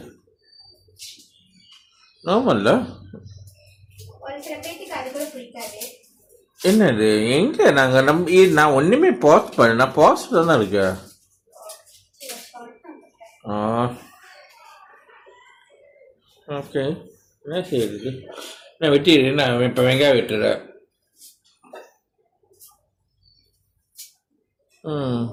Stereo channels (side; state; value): both; identical; correlation 1.00